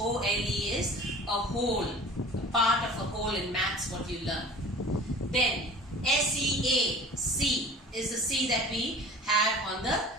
is a hole, a part of a hole in maths, what you learn. Then S-E-A, is the sea that we have on the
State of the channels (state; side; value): normal; both; correlation 0.42